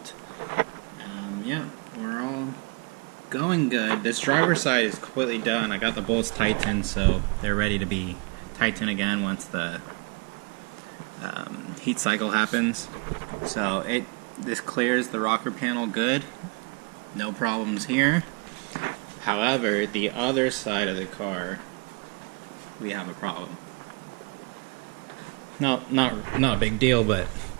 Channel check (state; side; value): quieter; left; 28.9 dB